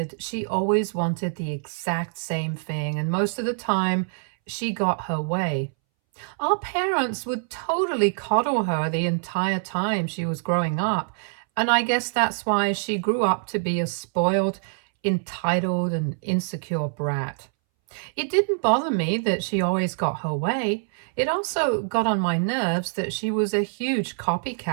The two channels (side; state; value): left; silent; 62 dB below the other